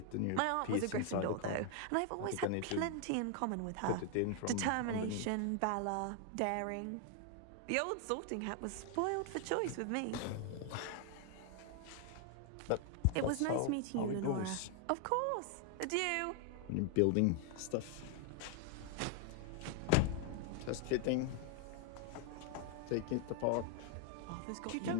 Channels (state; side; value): different; both; correlation 0.00